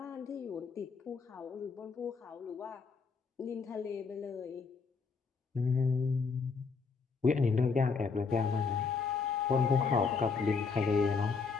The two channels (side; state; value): right; quieter; 4.9 dB